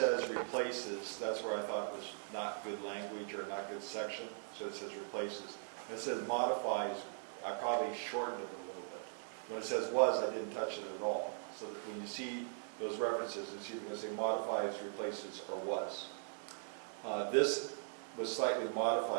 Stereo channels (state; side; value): silent; left; digital silence